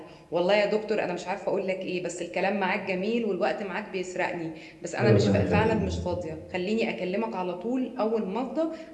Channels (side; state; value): both; identical; correlation 1.00